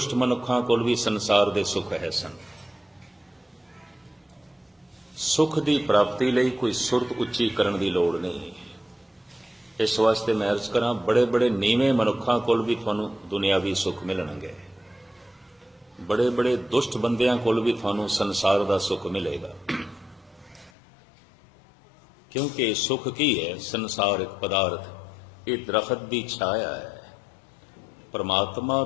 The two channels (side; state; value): right; drops out; at 20.7 s